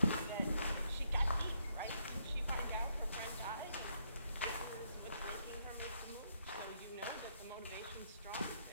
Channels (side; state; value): both; inverted; correlation -0.75